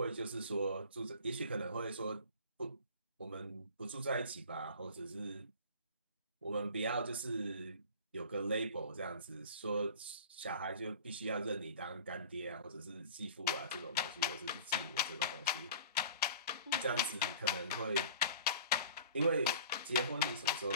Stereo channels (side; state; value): both; inverted; correlation -0.42